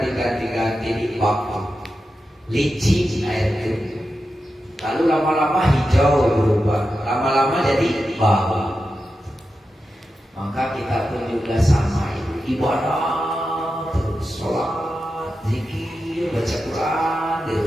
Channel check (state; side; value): normal; both; correlation 0.90